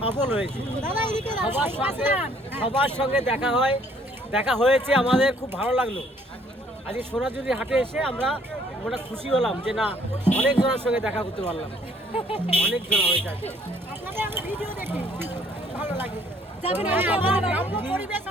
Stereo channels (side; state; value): both; normal; correlation 0.62